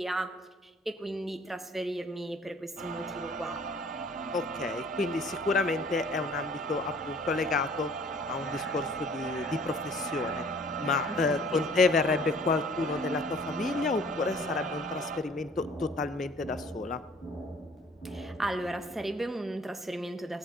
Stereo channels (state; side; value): normal; both; correlation 0.54